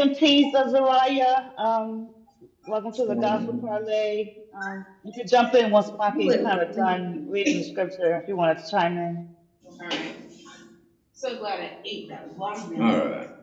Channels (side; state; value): both; identical; correlation 1.00